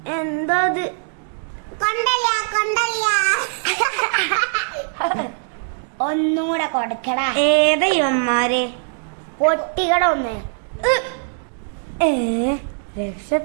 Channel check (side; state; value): left; silent; digital silence